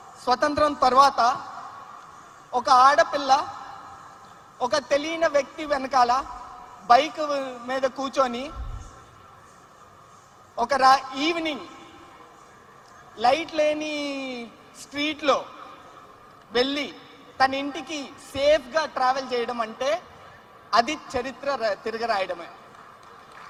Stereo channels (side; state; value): both; identical; correlation 1.00